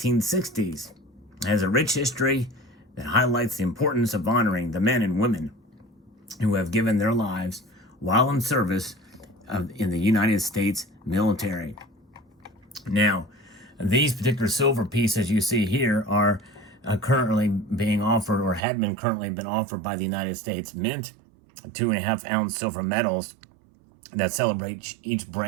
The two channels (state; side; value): drops out; left; at 18.6 s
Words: It has a rich history that highlights the importance of honoring the men and women who have given their lives while in service in the United States military. Now, these particular silver pieces you see here are currently being offered, or had been currently been offered by the United States Mint, 2.5-ounce silver medals that celebrate each